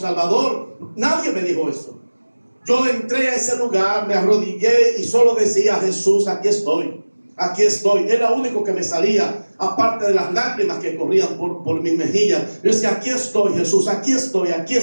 nadie me dijo eso. Yo entré a ese lugar, me arrodillé y solo decía: Jesús, aquí estoy, aquí estoy. Era lo único que me salía, aparte de las lágrimas que corrían por mis mejillas. Yo decía: aquí estoy, Jesús, aquí estoy, aquí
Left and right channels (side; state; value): both; inverted; correlation -1.00